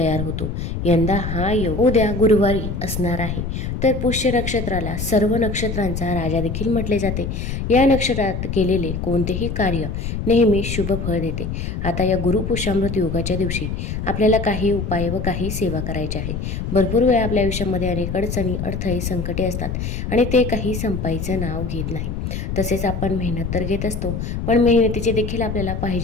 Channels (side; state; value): left; noise; rumble, 4 dB below the sound